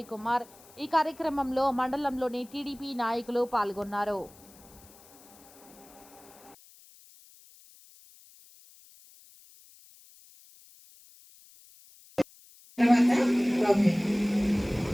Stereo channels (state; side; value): noise; left; hiss, 24 dB below the sound